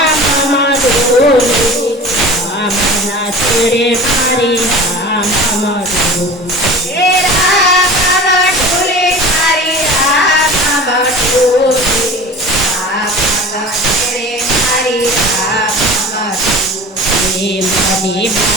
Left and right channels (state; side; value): normal; both; correlation 0.38